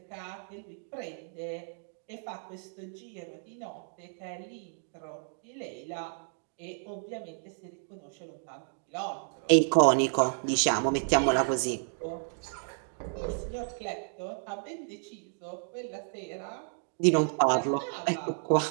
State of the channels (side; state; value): left; silent; digital silence